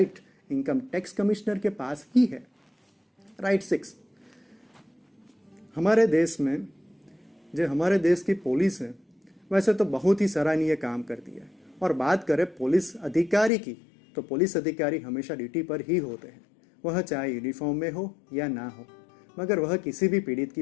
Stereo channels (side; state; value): right; drops out; at 13.5 s